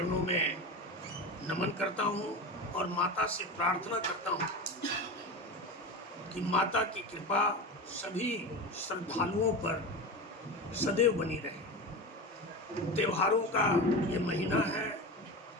में नमन करता हूं और माता से प्रार्थना करता हूं कि माता की कृपा सभी श्रद्धालुओं पर सदैव बनी रहे। त्योहारों का ये महीना है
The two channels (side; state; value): both; normal; correlation 0.25